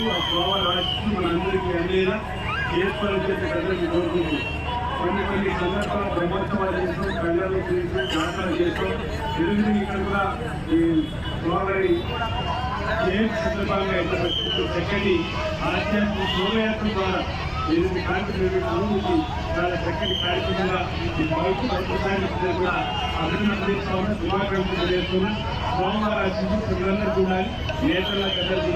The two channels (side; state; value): both; identical; correlation 1.00